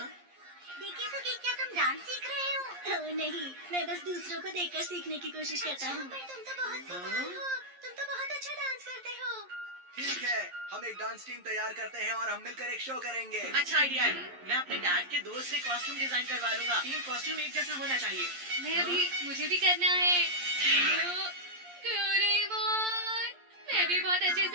देखिए तो कि क्या तुम डांस सीख रहे हो? ओह नहीं, मैं बस दूसरों को देखकर सीखने की कोशिश करता हूँ। पर तुम तो बहुत कमाल हो, तुम तो बहुत अच्छा डांस करते हो। ठीक है, हम एक डांस टीम तैयार करते हैं और हम मिलकर एक शो करेंगे। अच्छा आइडिया है। मैं अपने डैड के दोस्त से कॉस्ट्यूम डिजाइन करवा लूंगा। तीन कॉस्ट्यूम एक जैसा होना चाहिए। मुझे भी करना है। डोरेमोन, मैं भी बहुत अच्छे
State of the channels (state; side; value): late; left; 11 ms